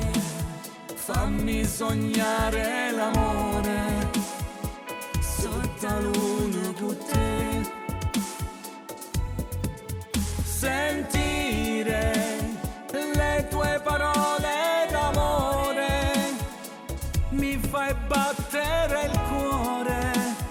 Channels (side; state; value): both; identical; correlation 1.00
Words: fammi sognare l'amore sotto la luna con te. Sentire le tue parole d'amore mi fai battere il cuore